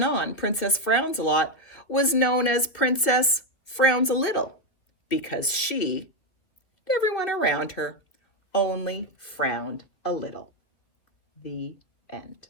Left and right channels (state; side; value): late; right; 2.8 ms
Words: on, Princess Frownsalot was known as Princess Frownsalot because she, and everyone around her, only frowned a little. The end.